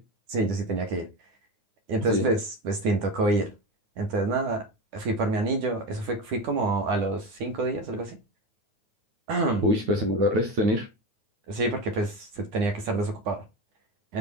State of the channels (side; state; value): left; late; 9.9 ms